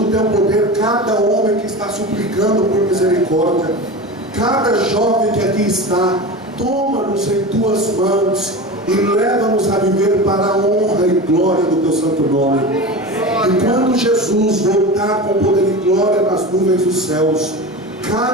Teu poder cada homem que está suplicando por misericórdia. Cada jovem que aqui está, toma-nos em Tuas mãos e leva-nos a viver para a honra e glória do Teu santo nome. E quando Jesus voltar com poder e glória nas nuvens dos céus,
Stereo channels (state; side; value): normal; both; correlation 0.28